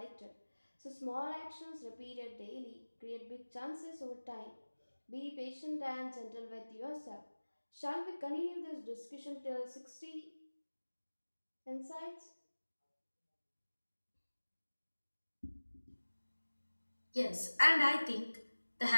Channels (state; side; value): inverted; both; correlation -1.00